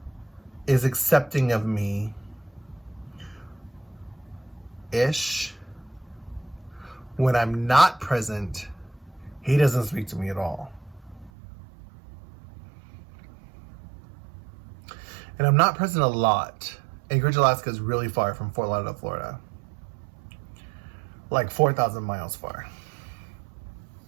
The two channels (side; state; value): left; drops out; at 11.3 s